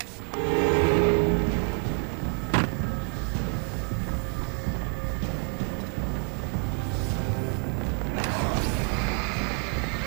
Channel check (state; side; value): quieter; left; 39.4 dB